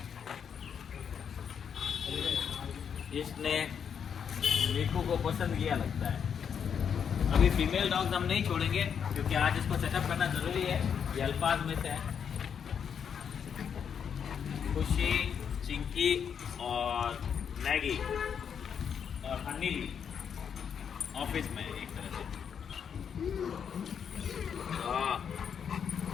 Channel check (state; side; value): quieter; right; 7.5 dB